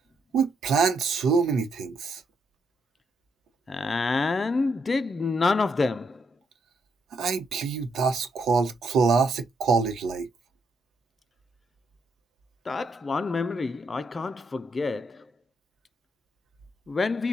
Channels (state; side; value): normal; both; correlation 0.77